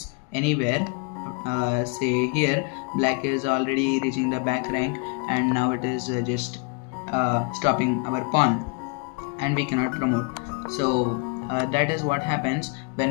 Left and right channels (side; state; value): right; quieter; 33.7 dB